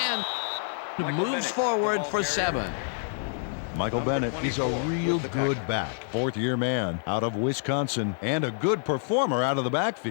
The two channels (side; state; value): right; silent; digital silence